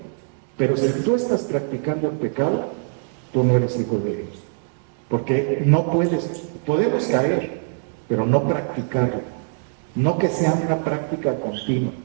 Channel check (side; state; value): left; silent; digital silence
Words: Pero si tú estás practicando el pecado, tú no eres hijo de Dios. Porque no podemos caer, pero no practicarlo. No que sea una práctica continua.